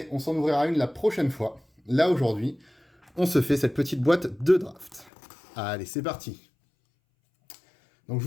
on s'en ouvrira une la prochaine fois. Là, aujourd'hui, on se fait cette petite boîte de draft. Allez, c'est parti. Donc je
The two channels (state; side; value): drops out; right; at 5.1 s